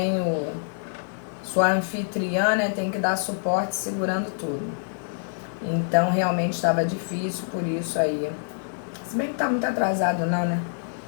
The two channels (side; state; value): right; silent; digital silence